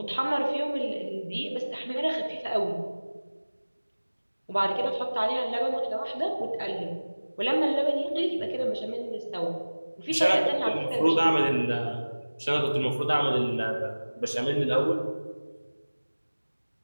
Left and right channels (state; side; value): inverted; both; correlation -1.00